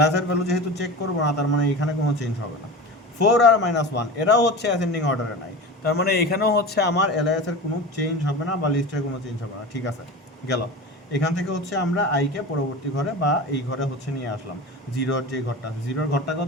এর ভ্যালু যেহেতু চেক করবো না, তার মানে এখানে কোনো চেঞ্জ হবে না। 4 আর -1 এরাও হচ্ছে অ্যাসেন্ডিং অর্ডারে নাই, তার মানে এখানেও হচ্ছে আমার এলআইএস এর কোনো চেঞ্জ হবে না বা লিস্টের কোনো চেঞ্জ হবে না। ঠিক আছে, গেল। এখান থেকে হচ্ছে আমরা আইকে পরবর্তী ঘরে বা এই ঘরে হচ্ছে নিয়ে আসলাম। জিরোর যে ঘরটা আছে, জিরোর ঘরটা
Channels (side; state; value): both; normal; correlation 0.31